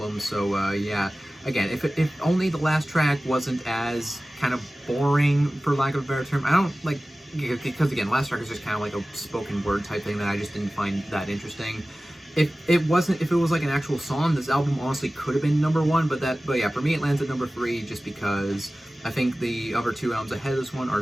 So yeah, again, if only the last track wasn't as kind of boring, for lack of a better term. I don't like, because again, last track is just kind of like a spoken word type thing that I just didn't find that interesting. If it was like an actual song, this album honestly could have been number 1, but yeah, for me it lands at number 3 just because I think the other 2 albums ahead of this one are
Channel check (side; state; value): both; normal; correlation 0.97